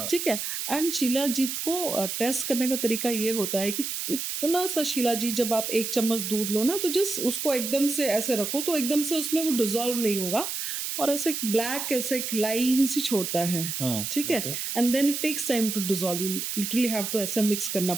ठीक है, एंड शिलाजीत को टेस्ट करने का तरीका ये होता है कि इतना सा शिलाजीत जब आप 1 चम्मच दूध लो ना, तो जस्ट उसको एकदम से ऐसे रखो तो एकदम से उसमें वो डिसॉल्व नहीं होगा, और ऐसे ब्लैक ऐसे लाइन सी छोड़ता है। हाँ, ठीक है, okay, and then it takes time to dissolve, you literally have to ऐसे मिक्स करना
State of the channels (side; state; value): right; noise; hiss, 4 dB below the sound